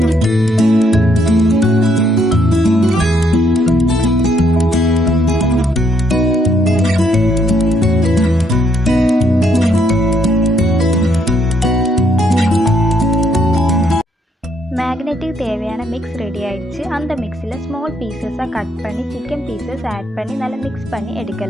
மேக்னெட்டுக்கு தேவையான மிக்ஸ் ரெடி ஆயிடுச்சு. அந்த மிக்ஸில் ஸ்மால் பீசஸாக கட் பண்ணி சிக்கன் பீசஸ் ஆட் பண்ணி நல்லா மிக்ஸ் பண்ணி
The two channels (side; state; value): both; normal; correlation 0.72